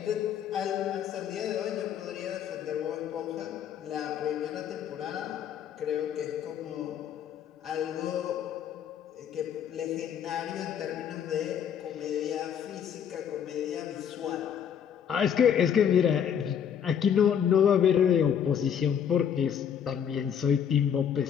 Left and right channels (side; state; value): right; quieter; 8.5 dB